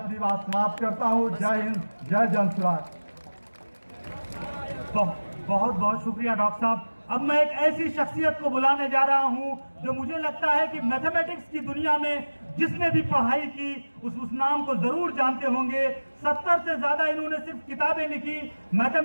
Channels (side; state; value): both; inverted; correlation -1.00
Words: बात समाप्त करता हूं। जय हिंद, जय जनसुराज। बहुत बहुत शुक्रिया डॉक्टर साहब। अब मैं एक ऐसी शख्सियत को बुलाने जा रहा हूं जो मुझे लगता है कि मैथमेटिक्स की दुनिया में जिसने भी पढ़ाई की उस नाम को जरूर जानते होंगे। 70 से ज्यादा इन्होंने सिर्फ किताबें लिखी।